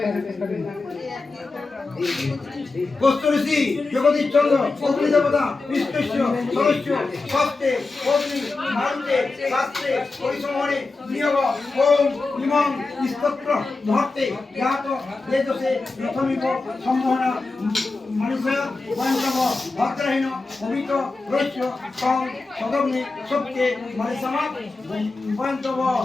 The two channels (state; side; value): quieter; right; 3.7 dB